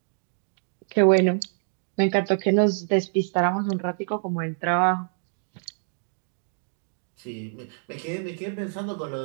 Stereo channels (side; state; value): left; silent; digital silence